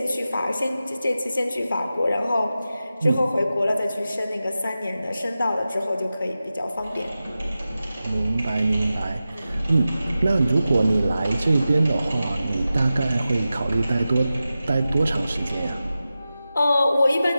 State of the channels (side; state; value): both; inverted; correlation -0.93